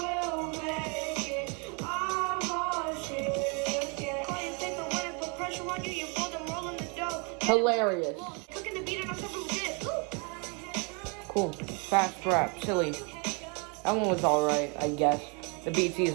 make it. I want it. Yeah. Call you take the win and put pressure on you. You fold them rolling the dough. Hilarious. Cooking the beat and I'm serving this. Cool. Fast rap. Silly. That one was alright, I guess. The beat's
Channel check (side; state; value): left; quieter; 33.7 dB